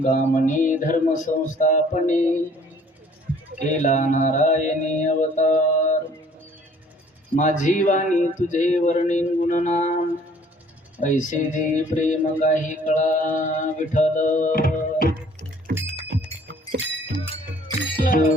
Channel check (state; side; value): normal; both; correlation 0.56